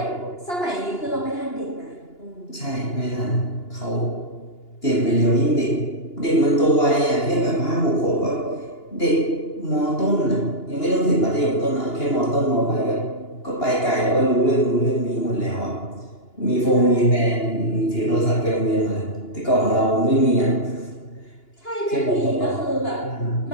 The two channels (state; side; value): late; right; 2.9 ms